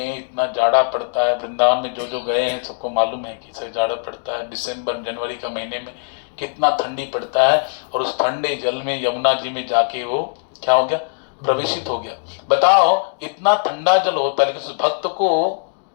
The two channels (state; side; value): silent; right; digital silence